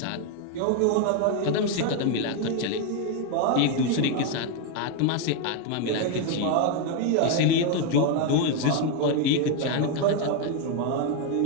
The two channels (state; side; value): different; both; correlation 0.01